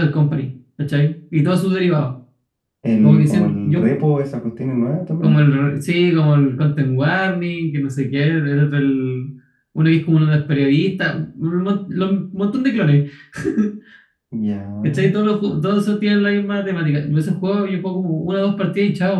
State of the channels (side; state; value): both; identical; correlation 1.00